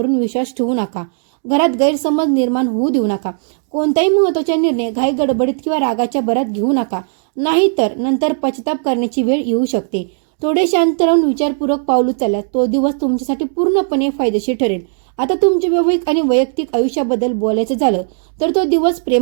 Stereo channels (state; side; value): silent; left; digital silence